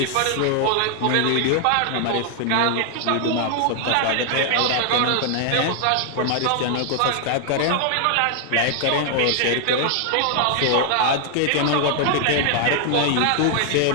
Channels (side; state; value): both; different; correlation 0.00